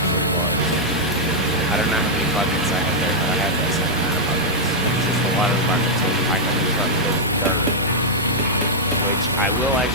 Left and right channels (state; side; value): normal; both; correlation -0.06